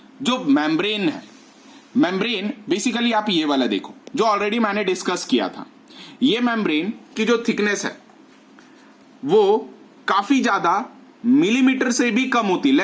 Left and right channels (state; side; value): identical; both; correlation 1.00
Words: जो मेम्ब्रेन है, मेम्ब्रेन बेसिकली आप ये वाला देखो जो ऑलरेडी मैंने डिस्कस किया था। ये मेम्ब्रेन की जो थिकनेस है वो काफी ज्यादा मिलीमीटर से भी कम होती,